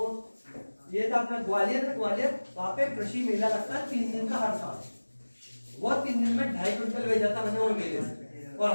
ये था अपना ग्वालियर में, वहां पे कृषि मेला लगता है 3 दिन का हर साल। वो 3 दिन में 2.5 क्विंटल बेचा था मैंने वो मेले से, और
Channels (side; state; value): both; inverted; correlation -1.00